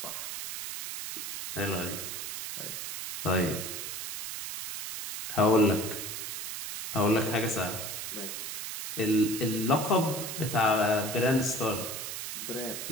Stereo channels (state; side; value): noise; right; hiss, 6 dB below the sound